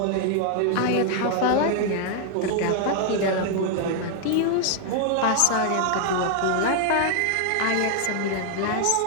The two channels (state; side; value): different; both; correlation 0.00